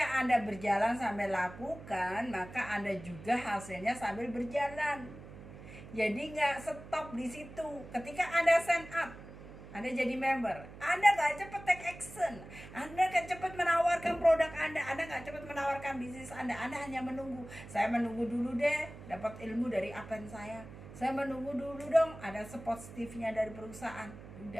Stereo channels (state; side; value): noise; right; hum, 15 dB below the sound